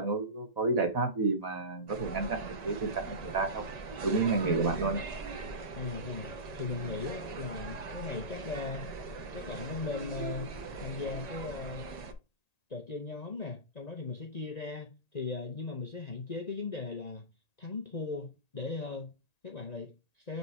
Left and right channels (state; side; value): late; right; 1.9 ms